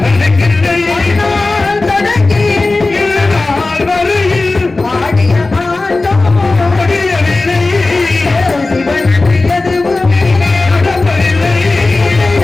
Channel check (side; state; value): right; quieter; 3.3 dB